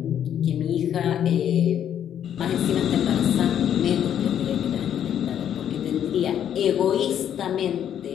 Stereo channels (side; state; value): right; quieter; 9.7 dB